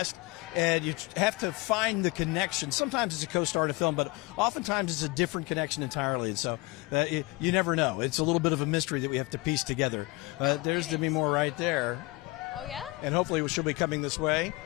and you have to find the connection. Sometimes it's a co-star in a film, but oftentimes it's a different connection entirely. And so you never know. It's a little bit of a mystery that we have to piece together. There's Demi Moore right there. Oh, yeah? And hopefully she'll be coming this way.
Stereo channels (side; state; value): right; quieter; 23.2 dB